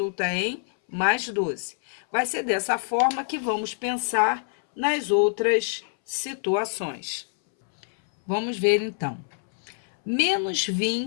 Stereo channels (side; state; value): right; silent; 61 dB below the other